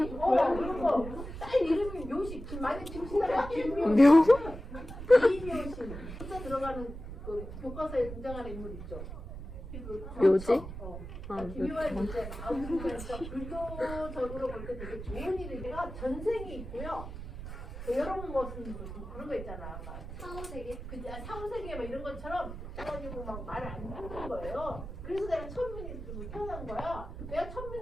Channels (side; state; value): right; noise; rumble, 9 dB below the sound